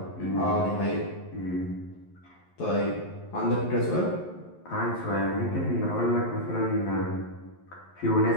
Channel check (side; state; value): right; late; 11 ms